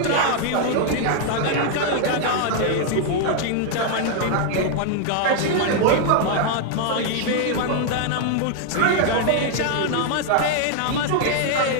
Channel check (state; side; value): different; both; correlation 0.00